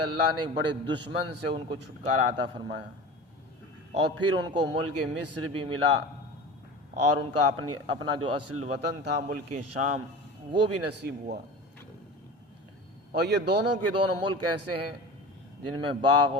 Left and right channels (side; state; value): both; normal; correlation 0.33